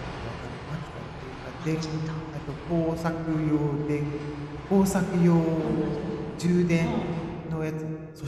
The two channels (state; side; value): identical; both; correlation 1.00